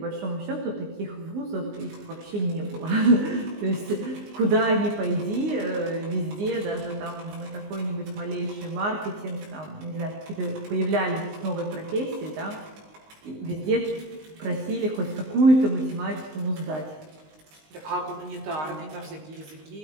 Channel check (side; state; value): left; late; 19 ms